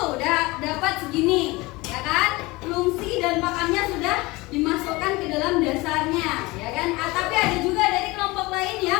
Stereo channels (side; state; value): right; quieter; 22.4 dB